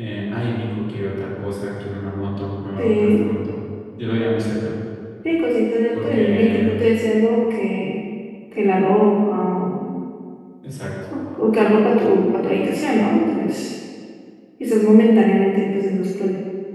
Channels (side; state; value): both; identical; correlation 1.00